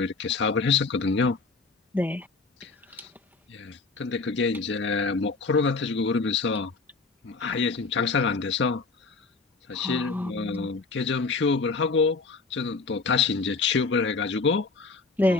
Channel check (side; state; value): right; quieter; 4.2 dB